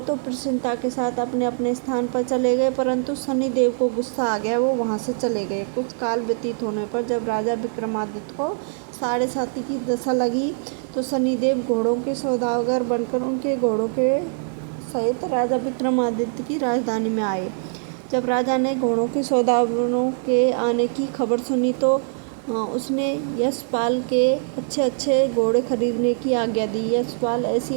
तो प्रसन्नता के साथ अपने अपने स्थान पर चले गए, परंतु शनिदेव को गुस्सा आ गया, वो वहाँ से चले गए। कुछ काल व्यतीत होने पर जब राजा विक्रमादित्य को 7.5 की दशा लगी तो शनिदेव घोड़ों के सौदागर बनकर उनके घोड़ों के सहित राजा विक्रमादित्य की राजधानी में आए। जब राजा ने घोड़ों के सौदागरों के आने की खबर सुनी तो उसने यशपाल के अच्छे घोड़े खरीदने की आज्ञा दी। यशपाल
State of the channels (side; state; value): left; silent; 63 dB below the other